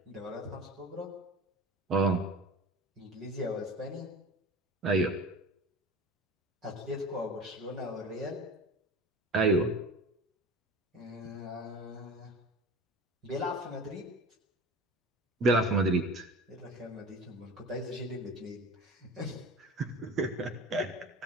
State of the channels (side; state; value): both; normal; correlation 0.36